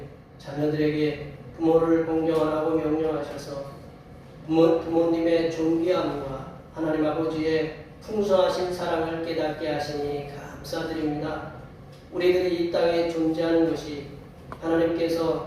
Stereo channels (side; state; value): both; identical; correlation 1.00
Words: 자녀들에게 부모를 공경하라고 명령하셔서 부모님의 존귀함과 하나님 아버지의 풍성하신 사랑을 깨닫게 하시니 감사드립니다. 우리들이 이 땅에 존재하는 것이